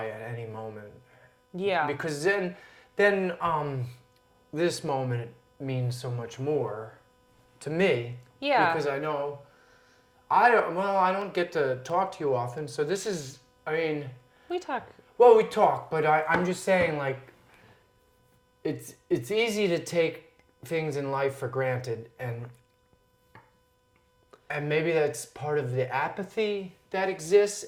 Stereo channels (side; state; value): both; identical; correlation 1.00